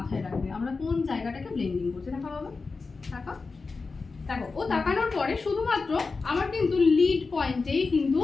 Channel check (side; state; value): right; quieter; 4.2 dB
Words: রাখবে, আমরা কোন জায়গাটাকে ব্লেন্ডিং করছি। দেখা বাবা, টাকা দেখো, ও তাকানোর পরে শুধুমাত্র আমার কিন্তু লিড পয়েন্টেই কিন্তু